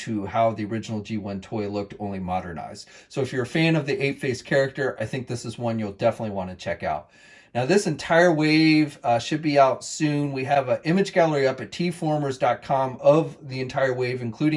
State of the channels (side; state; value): both; identical; correlation 1.00